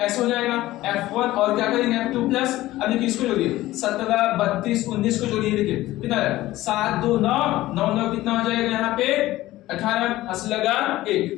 ऐसे हो जाएगा f1 और क्या करेंगे f2 प्लस, अब देखिए इसको जोड़िए 17 32 19 को जोड़िए, देखिए कितना है 7 2 9 9 9 कितना हो जाएगा यहाँ पे 18 हंस लगा 1।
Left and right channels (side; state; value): right; quieter; 16.5 dB